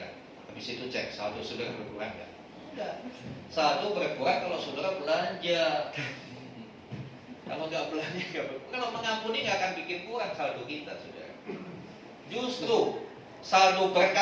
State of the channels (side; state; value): both; identical; correlation 1.00